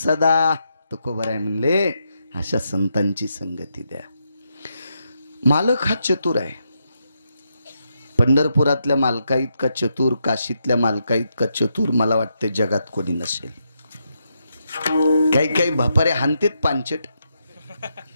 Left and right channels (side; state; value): both; inverted; correlation -0.82